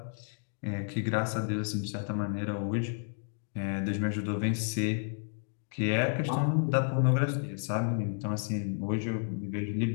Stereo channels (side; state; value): right; silent; 57 dB below the other